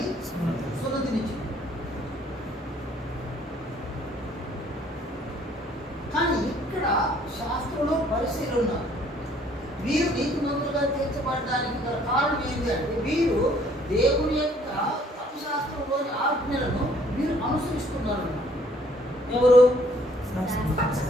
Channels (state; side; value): normal; both; correlation 0.61